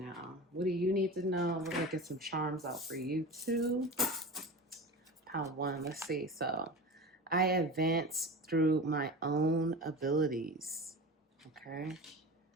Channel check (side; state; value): both; normal; correlation 0.31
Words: What do you need to know? We're going to get some charms out for you too. Pawan, let's see. So, I advance through my own abilities. Okay.